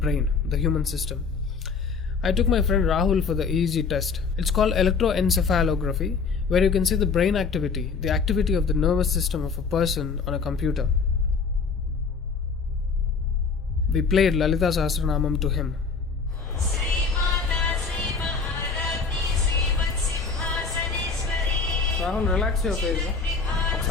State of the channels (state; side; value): quieter; right; 5.1 dB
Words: the human system. I took my friend Rahul for the EEG test. It's called electroencephalography, where you can see the brain activity, the activity of the nervous system of a person on a computer. We played Lalita Sahasranamam to him. Rahul, relax your face.